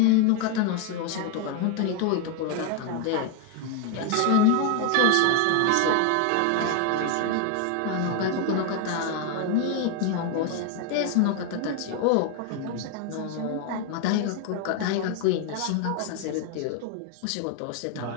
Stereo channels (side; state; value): both; different; correlation 0.01